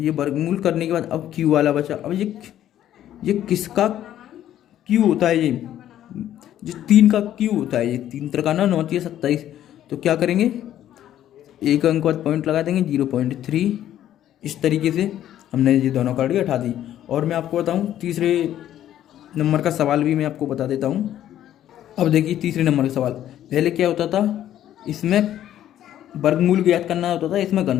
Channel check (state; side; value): quieter; right; 11.7 dB